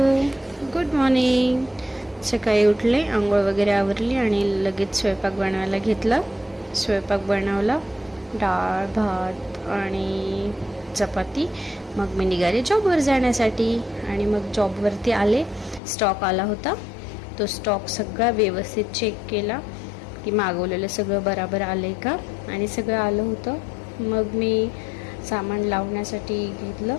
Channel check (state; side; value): drops out; right; at 15.8 s